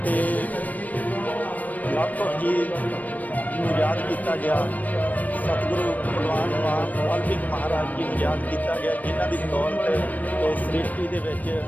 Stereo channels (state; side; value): late; right; 0.077 ms